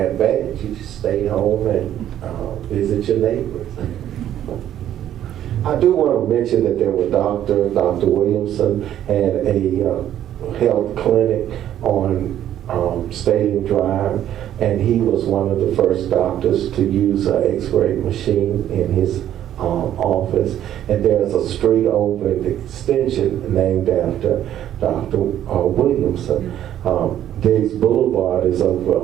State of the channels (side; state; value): left; quieter; 11.3 dB